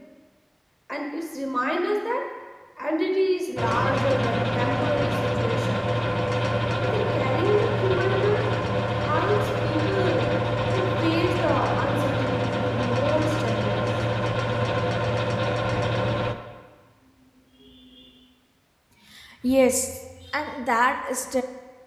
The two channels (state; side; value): identical; both; correlation 1.00